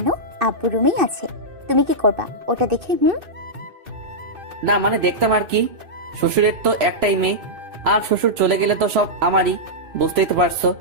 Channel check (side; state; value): left; late; 3.0 ms